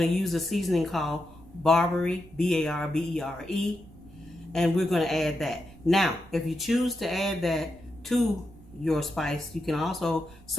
to use a seasoning called Barbary, B-A-R-B-E-R-E. And we're going to add that. Now, if you choose to add that to your spice, you can also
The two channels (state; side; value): noise; right; rumble, 22 dB below the sound